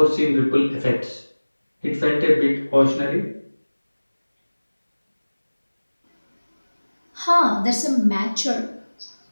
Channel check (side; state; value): both; inverted; correlation -1.00